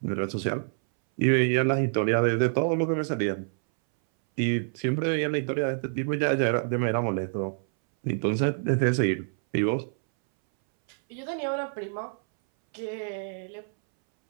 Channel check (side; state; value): left; silent; 60 dB below the other